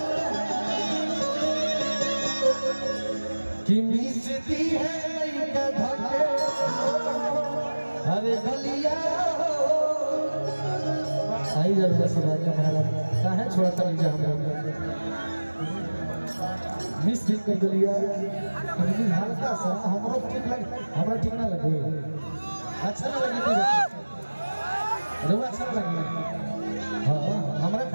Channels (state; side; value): inverted; both; correlation -1.00